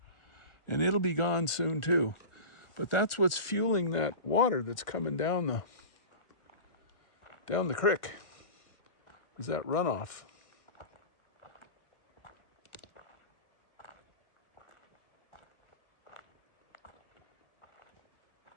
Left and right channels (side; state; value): right; late; 1.4 ms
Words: and it'll be gone soon too. But that's what's fueling that water that's coming down the creek, is that runoff.